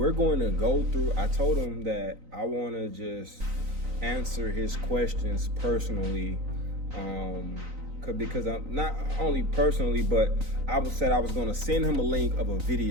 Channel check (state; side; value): late; left; 3.9 ms